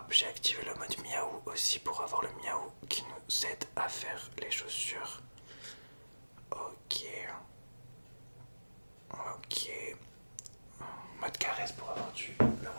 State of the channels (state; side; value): inverted; both; correlation -1.00